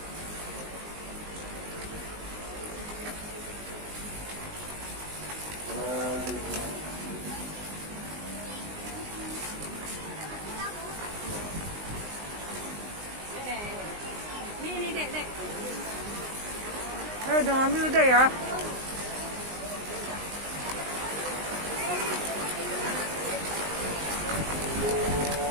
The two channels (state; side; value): late; left; 19 ms